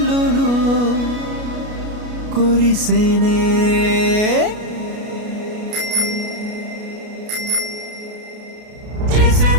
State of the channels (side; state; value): left; late; 33 ms